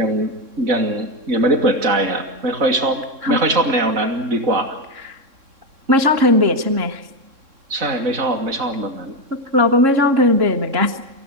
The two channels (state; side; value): late; left; 3.6 ms